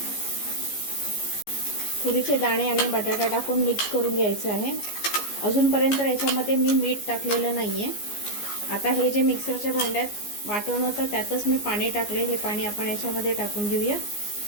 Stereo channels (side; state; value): right; late; 14 ms